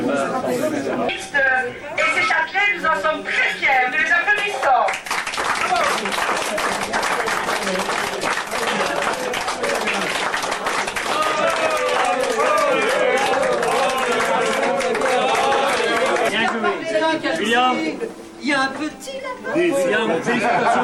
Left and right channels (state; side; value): identical; both; correlation 1.00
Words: Et ces châtelains, nous en sommes très fiers. Nous les applaudissons. William, il y a un petit là-bas. William,